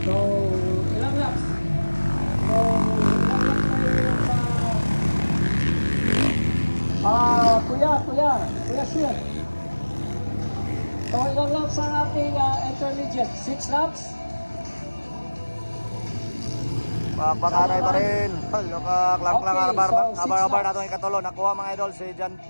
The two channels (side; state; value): both; inverted; correlation -1.00